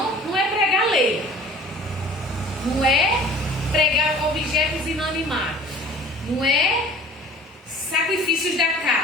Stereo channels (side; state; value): both; normal; correlation 0.46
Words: não é pregar lei, não é pregar objetos inanimados, não é sacrifícios da